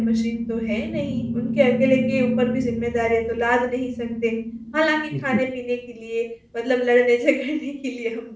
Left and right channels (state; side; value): identical; both; correlation 1.00